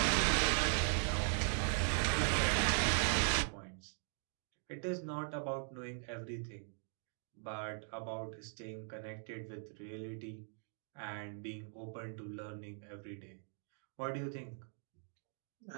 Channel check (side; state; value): left; silent; 51 dB below the other